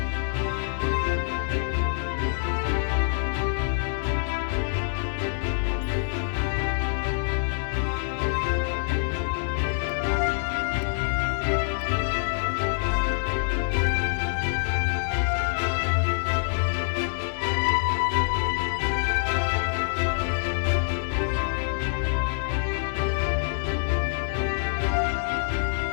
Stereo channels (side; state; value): right; silent; 61 dB below the other